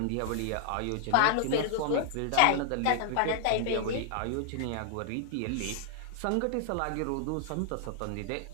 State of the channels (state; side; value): different; both; correlation -0.01